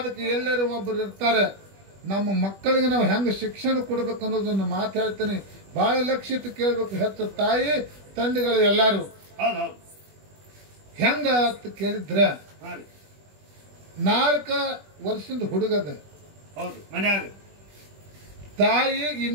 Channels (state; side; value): late; left; 20 ms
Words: ಎಲ್ಲರೂ ಒಬ್ಬರು ಇರ್ತಾರೆ. ನಮ್ಮ ಮಕ್ಕಳಿಗೆ ನಾವು ಹೆಂಗ ಶಿಕ್ಷಣ ಕೊಡ್ಬೇಕು ಅನ್ನೋದನ್ನ ಮಾತಾಡ್ತೀನಿ. ಬಹಳ ಲಕ್ಷ್ಯ ಇಟ್ಟು ಕೇಳ್ಬೇಕು. ಹೆಚ್ಚು ತಾಯಿ ತಂದೆಗಳು ಎಲ್ಲಾರು ಹೌದು ಹೌದು. ಹೆಂಗ ಅಂತ ಕೇಳಿದ್ರ, ಹಾ ರೀ 4 ವರ್ಷದ ಹುಡುಗದ. ಹೌದು. ಮನ್ಯಾಗ ತಾಯಿ